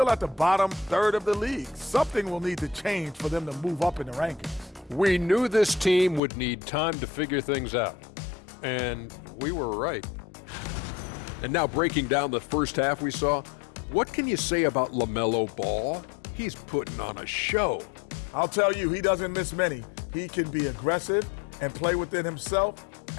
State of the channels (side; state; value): right; drops out; at 6.2 s